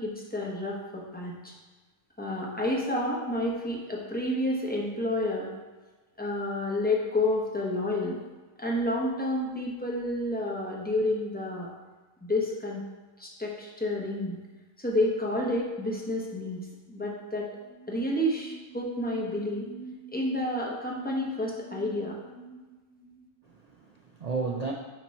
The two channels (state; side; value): normal; both; correlation 0.35